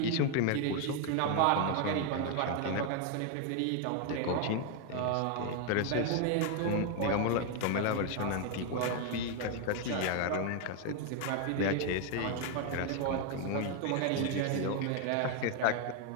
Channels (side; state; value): both; different; correlation 0.01